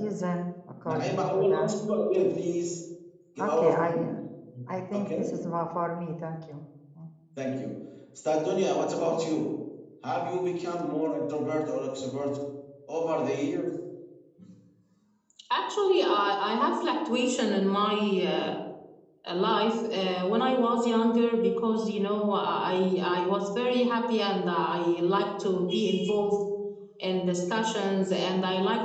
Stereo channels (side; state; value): both; identical; correlation 1.00